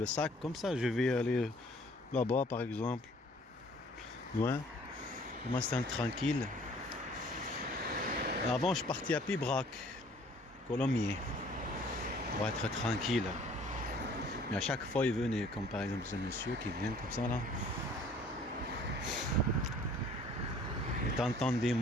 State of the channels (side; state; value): both; normal; correlation 0.55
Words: sac, comme ça, je vais aller là-bas par exemple. Loin. Moi, c'est tranquille. Avant, je partais à Pibrac, Colomiers, pour être tranquille. Mais à chaque fois, il venait, comme par exemple ce monsieur qui vient comme ça là. Et t'entends des